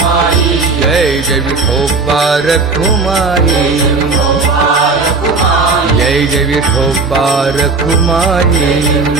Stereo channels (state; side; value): quieter; left; 4.1 dB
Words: जय जय विठोबा रखुमाई जय जय विठोबा रखुमाई